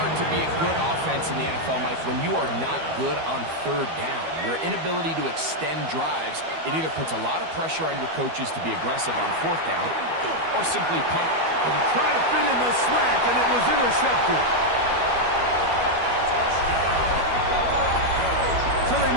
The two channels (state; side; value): late; left; 12 ms